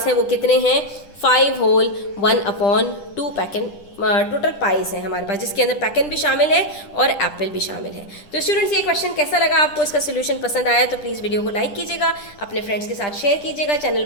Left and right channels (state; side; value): late; right; 10 ms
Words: हैं वो कितने हैं, 5 whole 1/2 pack and total pies हैं हमारे पास, जिसके अंदर पैकन भी शामिल है और एप्पल भी शामिल है। तो स्टूडेंट्स, ये क्वेश्चन कैसा लगा आपको, इसका सोल्यूशन पसंद आया तो प्लीज़ वीडियो को लाइक कीजिएगा, अपने फ्रेंड्स के साथ शेयर कीजिएगा, चैनल